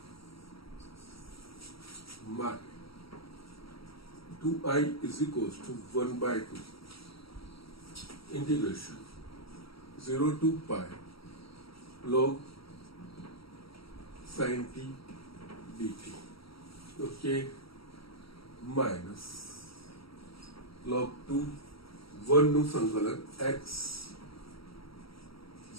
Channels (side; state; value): right; late; 0.75 ms